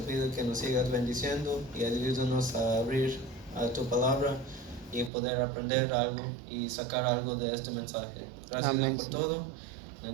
pido que nos sigas bendiciendo y ayúdanos a abrir tu palabra y poder aprender algo y sacar algo de este mensaje. Gracias Dios por todo. En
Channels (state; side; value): drops out; left; at 5.1 s